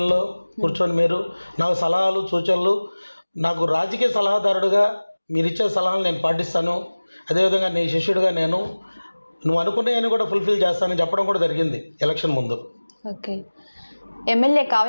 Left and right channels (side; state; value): both; inverted; correlation -1.00